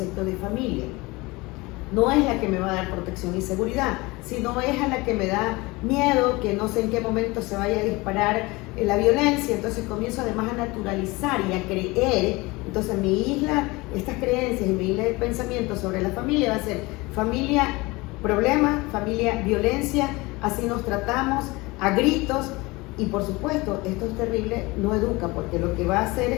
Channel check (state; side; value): quieter; right; 23.1 dB